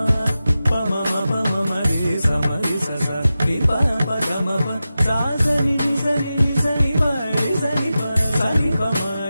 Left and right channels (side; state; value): both; inverted; correlation -0.93